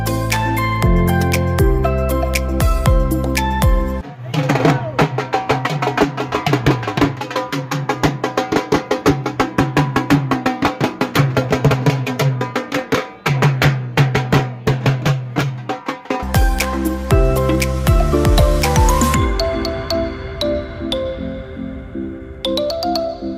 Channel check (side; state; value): both; identical; correlation 1.00